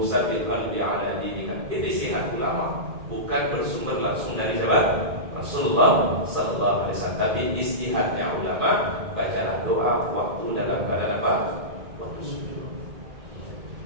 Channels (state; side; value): late; left; 2.1 ms